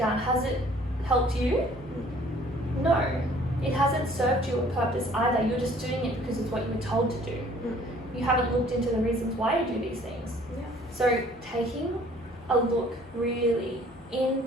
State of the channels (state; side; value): normal; both; correlation 0.56